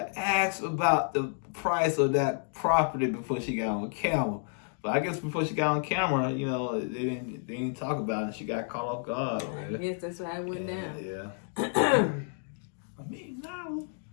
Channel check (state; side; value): silent; right; 58 dB below the other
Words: ask about the price of that property before she got on camera. But I guess before she got on camera, you know, they didn't talk about it. She got caught off guard. I guess that's why it went down. Yeah. $1 million.